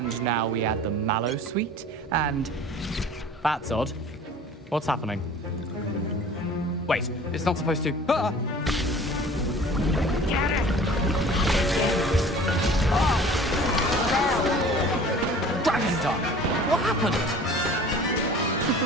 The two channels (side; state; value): both; normal; correlation 0.45